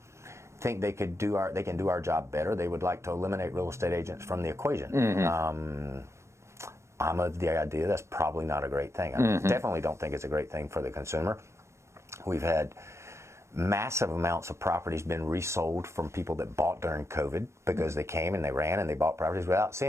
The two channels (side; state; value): left; late; 0.13 ms